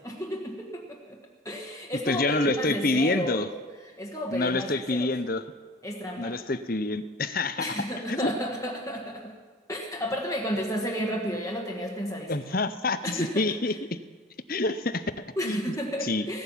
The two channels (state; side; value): normal; both; correlation 0.41